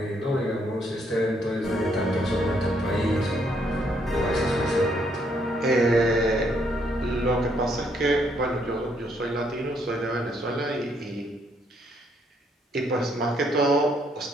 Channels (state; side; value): normal; both; correlation 0.71